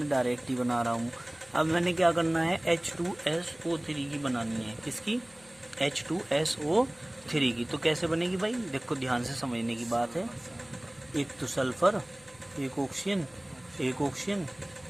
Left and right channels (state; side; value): noise; left; hum, 28 dB below the sound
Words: डायरेक्ट ही बना रहा हूँ। अब मैंने क्या करना है? H2SO3 की बनानी है। किसकी? H2SO3 की। तो कैसे बनेगी भाई? देखो ध्यान से समझने की बात है। एक तो सल्फर, एक ऑक्सीजन, एक ऑक्सीजन,